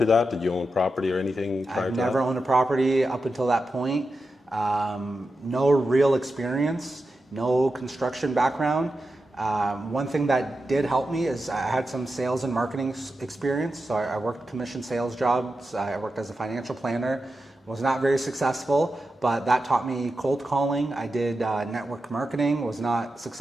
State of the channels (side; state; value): both; normal; correlation 0.90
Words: that? Did you own property or anything prior to that? I've never owned a property up until that point. No real experience. No construction background. One thing that did help me is I had some sales and marketing experience. So I worked commission sales jobs. I worked as a financial planner. Was not very successful, but that taught me cold calling. I did network marketing. Was not